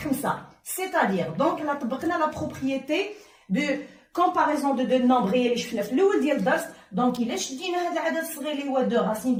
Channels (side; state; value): both; identical; correlation 1.00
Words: 5. C'est-à-dire, donc, là, طبقنا la propriété de comparaison de deux nombres اللي شفنا في الأول ديال الدرس. دونك إلا شدينا هذا العدد الصغير اللي هو 2 racines